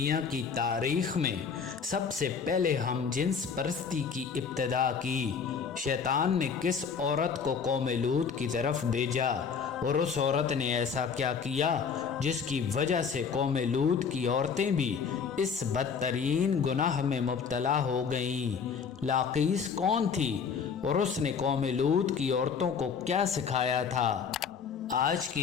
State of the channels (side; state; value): right; quieter; 6.2 dB